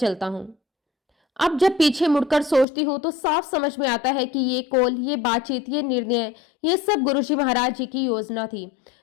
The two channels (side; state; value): right; drops out; at 2.7 s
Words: हूँ। अब जब पीछे मुड़कर सोचती हूँ तो साफ समझ में आता है कि ये कॉल, ये बातचीत, ये निर्णय, ये सब गुरुजी महाराज जी की योजना थी।